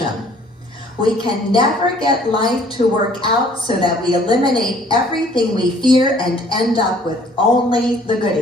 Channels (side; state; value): both; normal; correlation 0.57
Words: We can never get life to work out so that we eliminate everything we fear and end up with only the